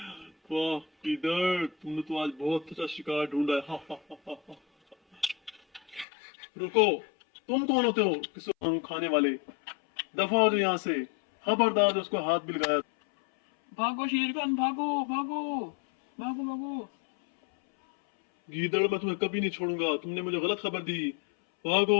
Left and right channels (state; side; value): drops out; right; at 6.1 s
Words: वाह किधर, तुमने तो आज बहुत अच्छा शिकार ढूंढा है। रुको, तुम कौन होते हो किसी खाने वाले? दफा हो जो यहाँ से। खबरदार उसको हाथ भी लगाया। भागो शेर खान, भागो भागो भागो भागो। गीदड़ मैं तुम्हें कभी नहीं छोड़ूंगा, तुमने मुझे गलत खबर दी।